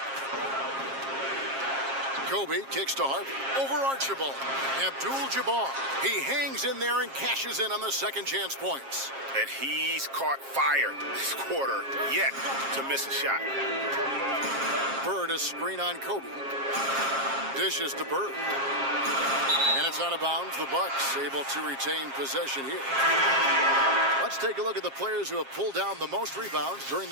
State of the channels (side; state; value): left; late; 7.4 ms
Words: Kobe kicks to Harper. Over Archibald. Abdul-Jabbar. He hangs in there and cashes in on the second chance points. And he's caught fire this quarter yet to miss a shot. Bird a screen on Kobe. Dishes to Bird. And it's out of bounds. The Bucks able to retain possession here. Let's take a look at the players who have pulled down the most rebounds during